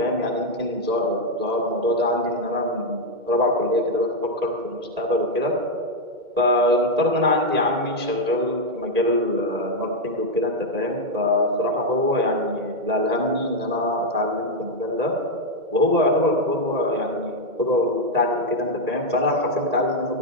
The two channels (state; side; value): late; left; 2.1 ms